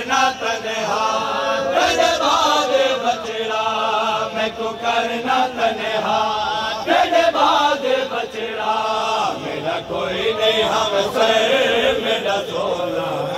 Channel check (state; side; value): identical; both; correlation 1.00